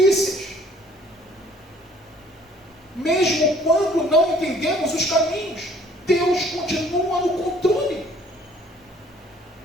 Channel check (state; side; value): normal; both; correlation 0.57